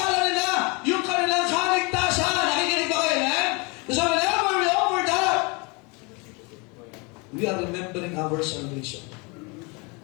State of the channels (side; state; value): right; quieter; 29.5 dB